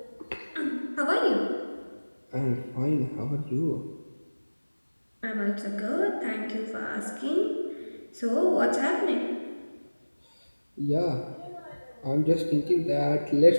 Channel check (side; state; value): both; inverted; correlation -1.00